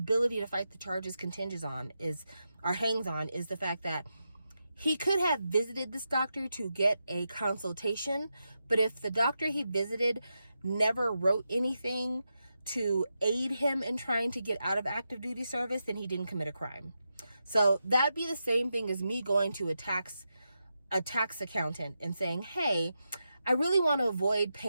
to fight the charges hangs on is the fact that he could have visited this doctor to get a consultation, but if the doctor he visited never wrote anything to aid him in trying to get out of active duty service, then he didn't commit a crime. So that'd be the same thing as me going to a tax accountant and saying, hey, I really want to avoid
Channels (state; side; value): inverted; both; correlation -0.88